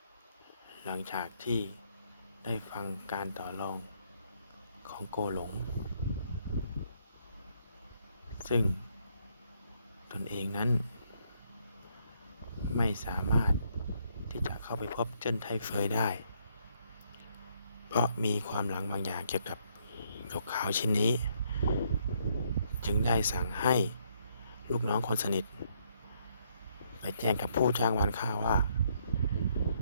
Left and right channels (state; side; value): inverted; both; correlation -0.71